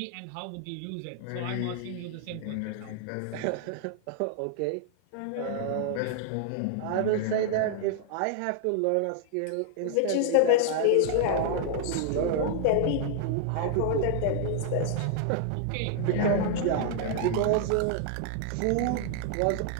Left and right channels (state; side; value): different; both; correlation 0.00